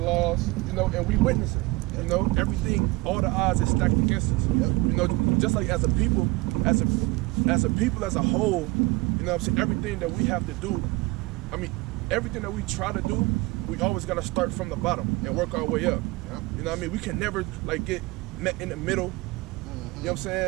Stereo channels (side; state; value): left; quieter; 22.6 dB